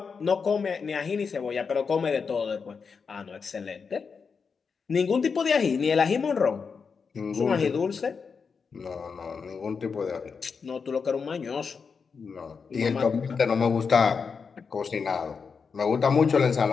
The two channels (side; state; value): right; quieter; 5.5 dB